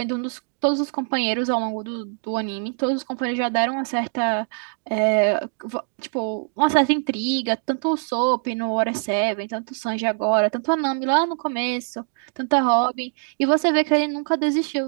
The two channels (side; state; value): left; silent; digital silence